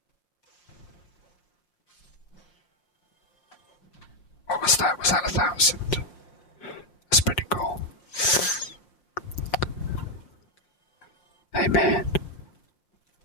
What was that? Was that 1,000? That's pretty cool. Hey man,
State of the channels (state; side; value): late; right; 5.7 ms